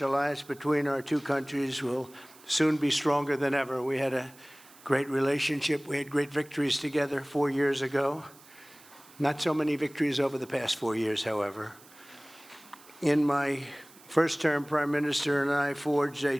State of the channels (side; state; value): right; noise; hiss, 24 dB below the sound